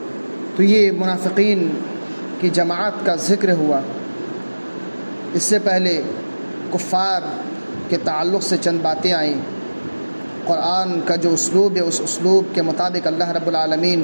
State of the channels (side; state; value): both; inverted; correlation -1.00